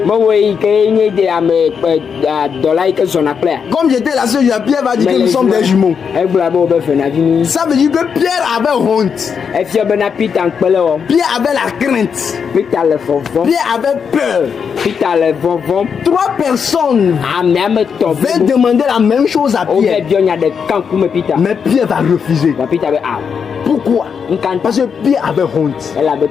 Comme j'étais la seule, Pierre va dire que nous sommes des jumeaux. Ça veut dire que Pierre avait honte. Pierre avait la crainte. Pierre avait peur. 3 personnes veulent demander la même chose à Pierre. Mais Pierre va refuser. Pourquoi? Parce que Pierre avait honte.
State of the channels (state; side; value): quieter; right; 6.6 dB